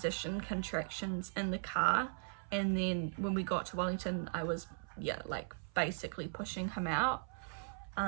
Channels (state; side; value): silent; left; 52 dB below the other